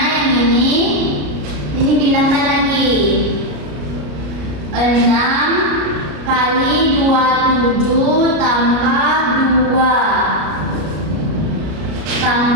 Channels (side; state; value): left; late; 33 ms